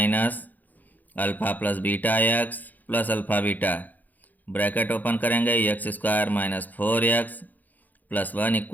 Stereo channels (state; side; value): late; right; 0.083 ms